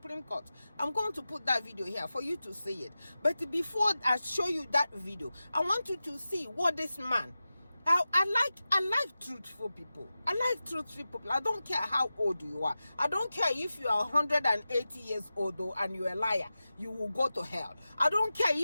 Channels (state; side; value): inverted; both; correlation -0.94